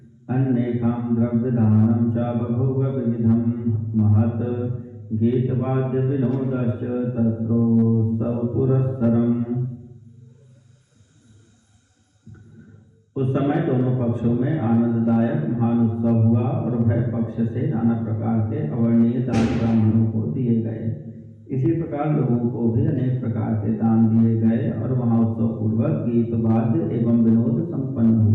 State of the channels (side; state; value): both; identical; correlation 1.00